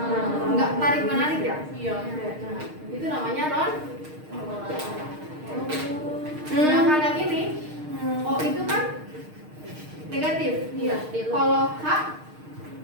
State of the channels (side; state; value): left; late; 6.5 ms